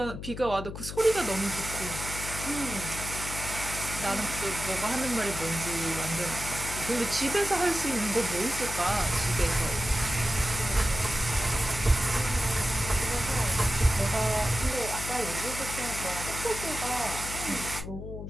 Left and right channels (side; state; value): left; noise; hum, 8 dB below the sound